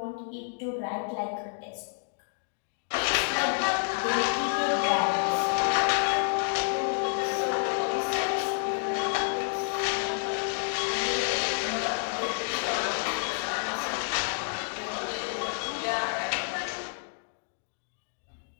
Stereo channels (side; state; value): right; silent; 58 dB below the other